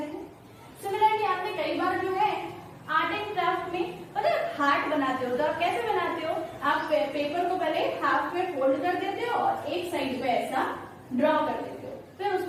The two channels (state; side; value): identical; both; correlation 1.00